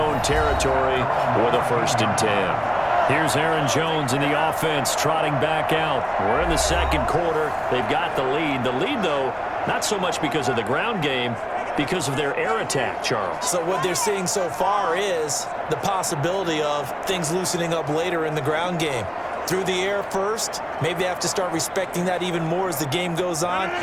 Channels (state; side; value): identical; both; correlation 1.00